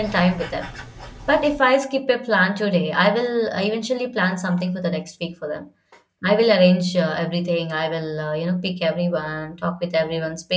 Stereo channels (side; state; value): both; identical; correlation 1.00